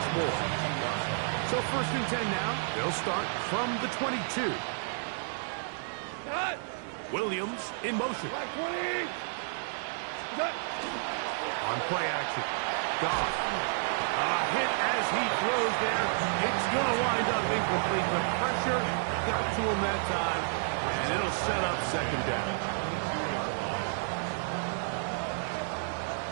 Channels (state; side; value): silent; left; digital silence